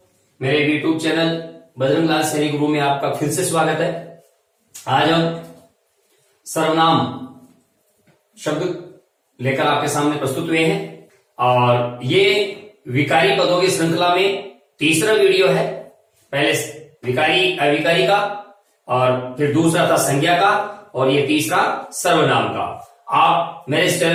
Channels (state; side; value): identical; both; correlation 1.00